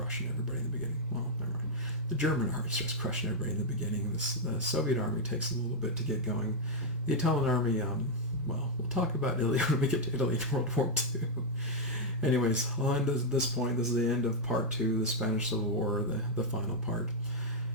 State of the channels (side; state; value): both; normal; correlation -0.02